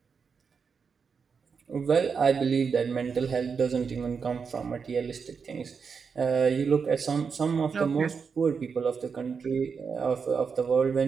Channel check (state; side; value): quieter; left; 5.8 dB